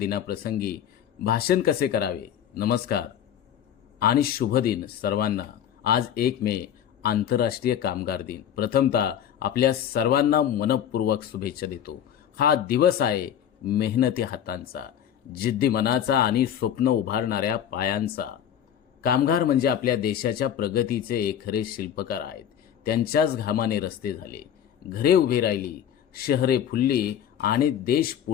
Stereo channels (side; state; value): right; quieter; 9.7 dB